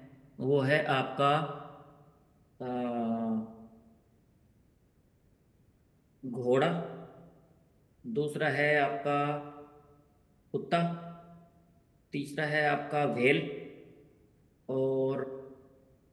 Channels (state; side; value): identical; both; correlation 1.00